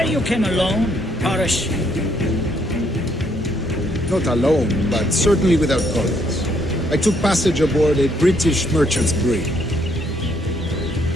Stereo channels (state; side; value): normal; both; correlation 0.70